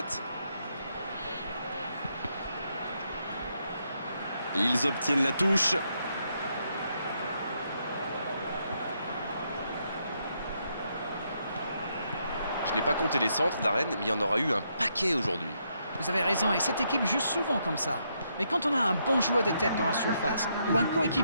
Ils obtiennent la touche. Je n'ai pas compté les centres d'Arène, mais il y en aura eu un paquet aujourd'hui. Vous avez raison, et cette équipe joue souvent comme ça. Mais quand on a un bon joueur de tête dans la surface, ou un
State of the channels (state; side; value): inverted; both; correlation -0.77